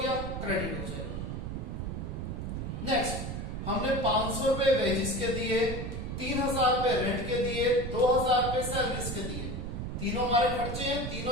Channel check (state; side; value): noise; right; rumble, 4 dB below the sound